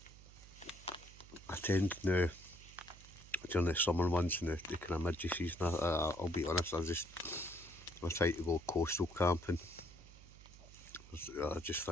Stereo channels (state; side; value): noise; right; hum, 19 dB below the sound